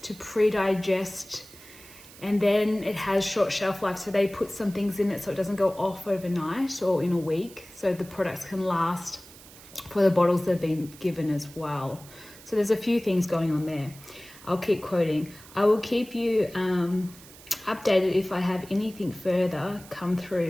pre-digest, and then it has short shelf life. So they put some things in it so it doesn't go off overnight or in a week. So the products can last for the bottles they've been given as well. So there's a few things going on there. I'll keep quoting. I will keep you updated if I have anything further come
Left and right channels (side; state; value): right; noise; hiss, 20 dB below the sound